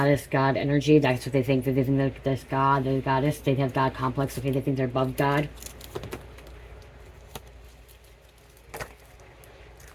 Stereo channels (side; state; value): both; identical; correlation 1.00